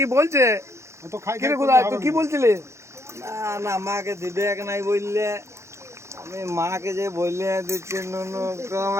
বলছে। অত খাই কি রে করলে গুদায়, হবে তুই কি না। বলছিলি? না না, মাকে দিবে এক নাই বললে। আমি মাকে যে বললে দিচ্ছি নুনু,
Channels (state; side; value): late; left; 0.14 ms